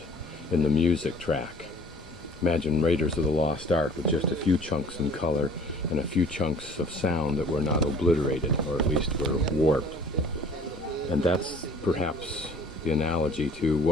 in the music track. Imagine Raiders of the Lost Ark with just a few chunks in color and a few chunks of sound that were not obliterated, or at least were warped. And that's perhaps the analogy to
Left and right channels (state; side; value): normal; both; correlation 0.51